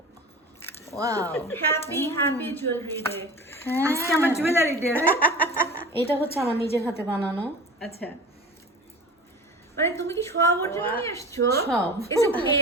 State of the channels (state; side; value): normal; both; correlation 0.36